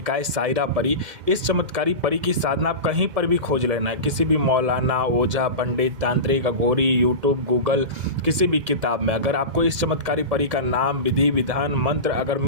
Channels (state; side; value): late; left; 2.1 ms